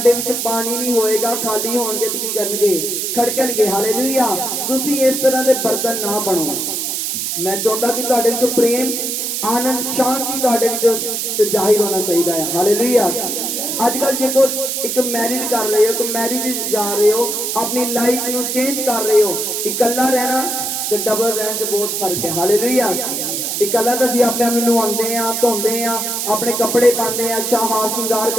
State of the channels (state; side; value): noise; right; hiss, 2 dB below the sound